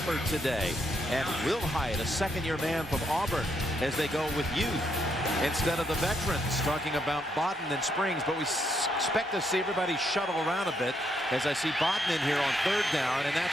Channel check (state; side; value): normal; both; correlation 0.76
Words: today. And Will Hyatt, a 2nd-year man from Auburn, as they go with youth instead of the veterans, talking about Bodden and Springs. But we expect to see everybody shuttle around a bit, as I see Bodden in here on 3rd down, and